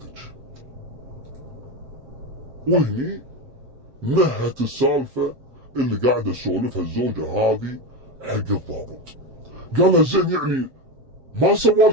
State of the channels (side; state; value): left; late; 7.6 ms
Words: وهني نهت السالفة اللي قاعدة تسولفها الزوجة هذه حق الضابط. قال لها زين يعني ما